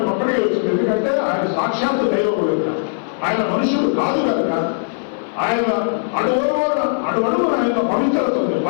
ఒక్కడికి వచ్చింది. ఎందుకంటే ఆయన సాక్షాత్తు దైవం కనుక, ఆయన మనుషుడు కాదు కనుక ఆయన అడుగడుగున ఆయన పవిత్రత ఉంది,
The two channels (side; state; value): right; silent; 57 dB below the other